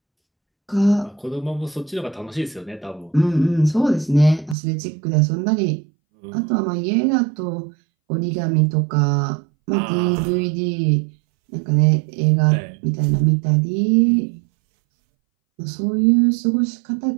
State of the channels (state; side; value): drops out; left; at 4.5 s